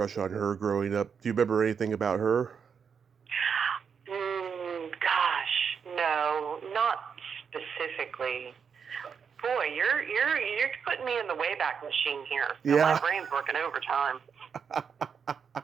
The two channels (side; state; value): left; quieter; 6.6 dB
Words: on her growing up. Do you remember anything about her? Gosh, no, not specifically. Boy, you're putting me in the Wayback Machine here. So Yeah. My brain's working overtime.